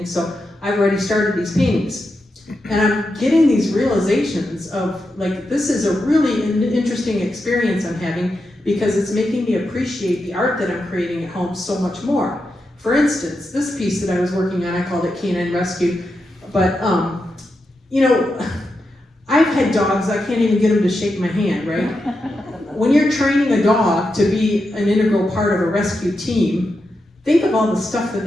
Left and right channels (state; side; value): normal; both; correlation 0.87